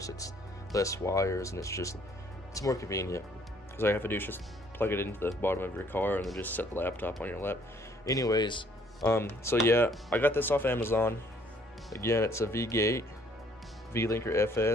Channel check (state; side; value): normal; both; correlation 0.62